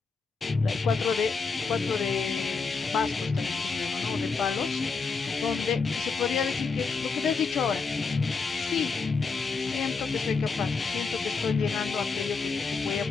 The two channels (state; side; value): quieter; right; 4.7 dB